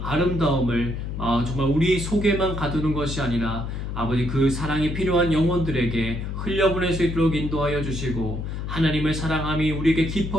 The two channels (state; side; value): noise; left; hum, 5 dB below the sound